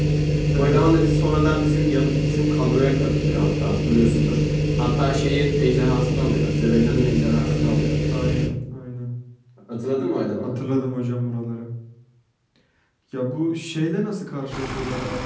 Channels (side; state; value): both; identical; correlation 1.00